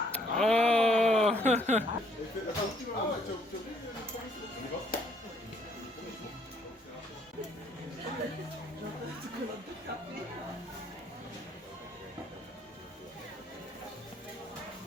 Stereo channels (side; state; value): both; normal; correlation 0.66